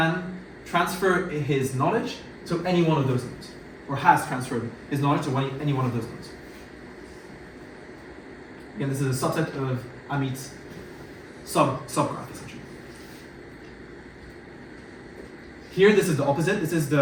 transfer his knowledge to any one of those nodes, or has transferred his knowledge to any one of those nodes. Again, this is a subset of Amit's subgraph, essentially. Here, this is the opposite. This is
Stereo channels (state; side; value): identical; both; correlation 1.00